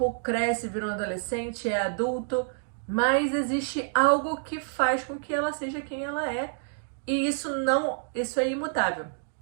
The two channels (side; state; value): left; silent; digital silence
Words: cresce, vira um adolescente, é adulto, mas existe algo que faz com que ela seja quem ela é. E isso é imutável.